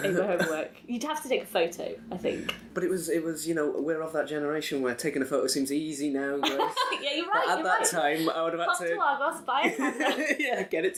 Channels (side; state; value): both; identical; correlation 1.00